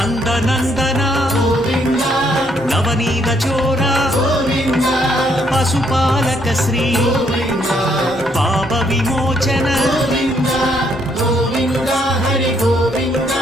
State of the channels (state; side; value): normal; both; correlation 0.70